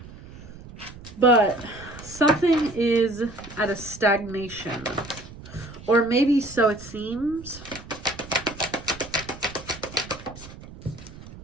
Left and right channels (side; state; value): right; noise; rumble, 16 dB below the sound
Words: But something is at a stagnation. Or maybe so it seems.